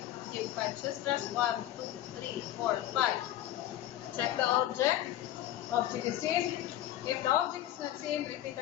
Give 5 chest thrusts. 1, 2, 3, 4, 5. Check the object. Object is seen. If the object is not seen, repeat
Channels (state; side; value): quieter; right; 13.3 dB